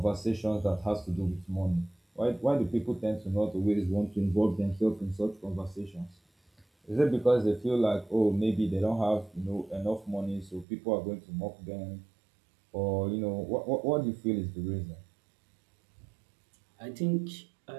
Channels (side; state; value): left; drops out; at 10.7 s